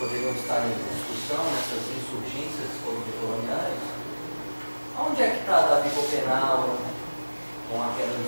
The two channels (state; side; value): inverted; both; correlation -1.00